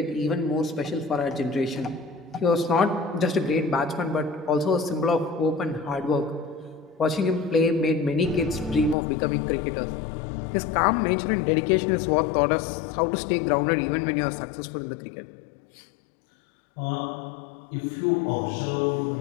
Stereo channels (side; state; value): right; drops out; at 9.0 s